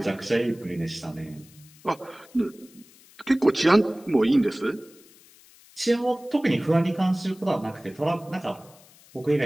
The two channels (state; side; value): noise; left; hiss, 25 dB below the sound